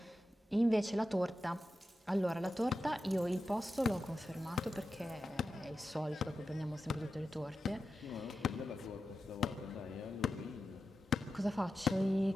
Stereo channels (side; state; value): both; normal; correlation 0.91